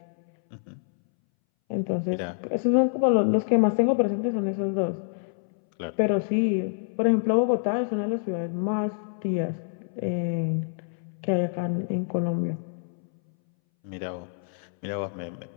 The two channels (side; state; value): right; silent; 60 dB below the other